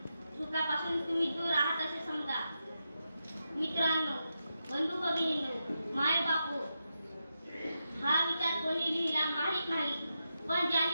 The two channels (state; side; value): inverted; both; correlation -0.87